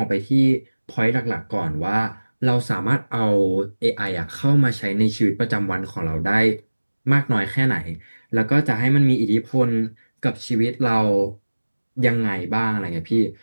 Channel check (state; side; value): inverted; both; correlation -1.00